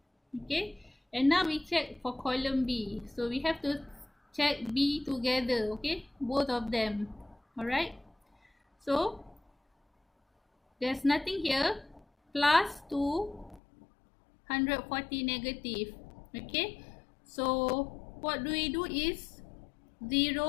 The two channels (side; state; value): right; drops out; at 13.6 s